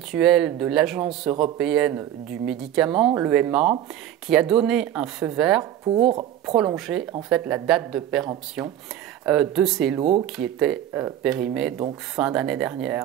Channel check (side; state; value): left; quieter; 11.4 dB